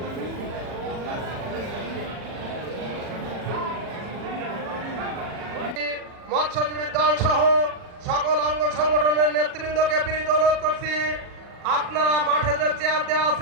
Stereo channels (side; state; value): left; late; 40 ms